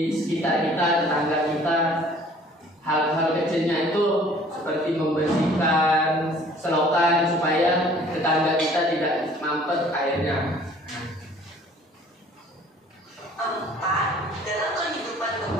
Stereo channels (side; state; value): both; normal; correlation 0.53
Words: sekitar kita, tetangga kita. Hal-hal kecilnya itu seperti membersihkan selokan supaya tetangga kita tidak mampet airnya. Empat, dalam kehidupan